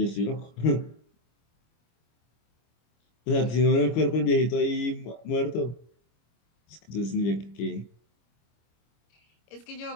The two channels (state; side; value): late; right; 25 ms